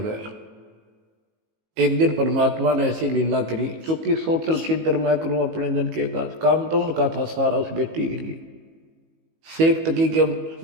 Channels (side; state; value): left; late; 19 ms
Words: गया। एक दिन परमात्मा ने ऐसी लीला करी, क्योंकि सोचल छिद्र मैं करूं अपने जन के काम तो उनका था सारा उस बेटी के लिए। शेख तकी के